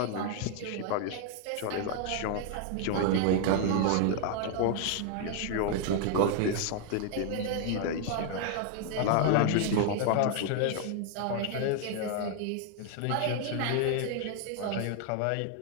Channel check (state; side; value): different; both; correlation 0.00